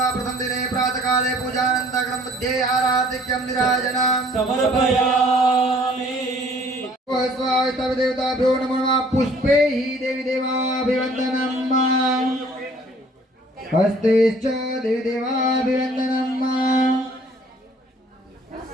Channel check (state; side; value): normal; both; correlation 0.56